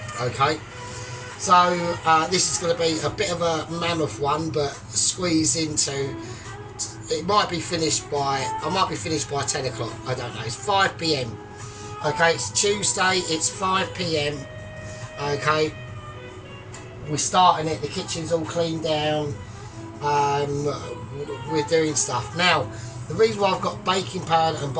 Okay. So this is going to be a bit of a mammoth one, but squeeze into. It might be finished by. I might be finished by 10 o'clock. I don't know. It's 5 p.m. Okay. It's Tuesday. It's 5 p.m. Okay. We're starting it. The kitchen's all cleaned down. We're doing stuff now. The reason why I've got baking powder and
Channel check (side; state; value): both; identical; correlation 1.00